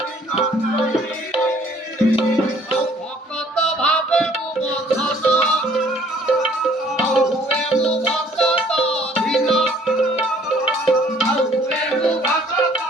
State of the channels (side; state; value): both; normal; correlation 0.59